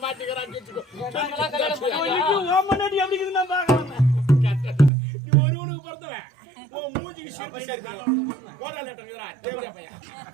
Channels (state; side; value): drops out; left; at 4.9 s